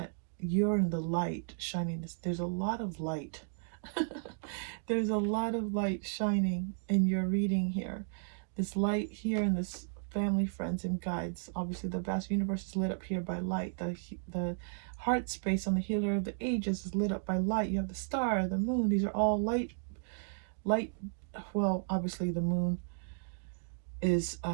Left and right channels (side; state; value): left; silent; digital silence